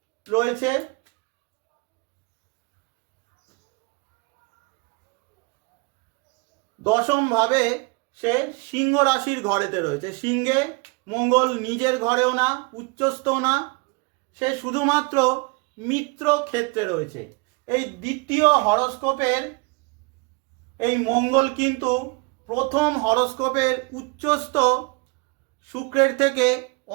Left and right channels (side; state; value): left; quieter; 28.7 dB